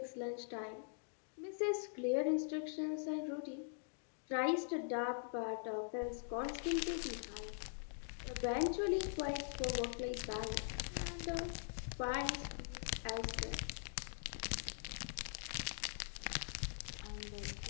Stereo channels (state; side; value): silent; right; digital silence